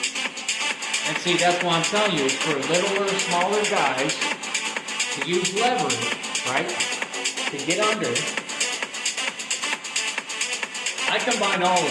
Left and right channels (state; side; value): identical; both; correlation 1.00